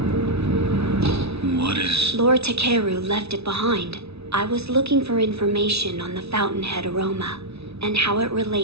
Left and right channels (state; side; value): late; left; 0.79 ms